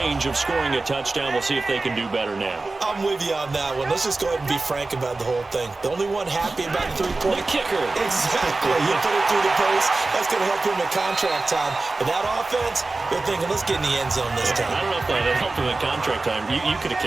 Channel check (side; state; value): left; quieter; 3.4 dB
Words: of scoring a touchdown. We'll see if they can do better now. I'm with you on that one. Let's just go ahead and be frank about the whole thing. The only one happy about the 3-point? The kicker. Exactly. You put it through the post. That's going to help him at contract time. But that offense, they're thinking, let's get in the end zone this time. I don't know if that helped him at contract time. You could have